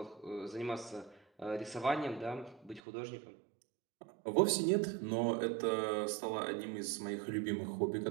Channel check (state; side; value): drops out; left; at 2.8 s